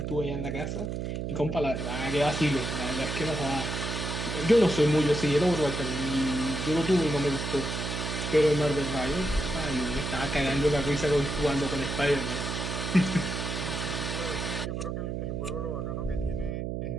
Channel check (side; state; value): right; noise; hum, 3 dB below the sound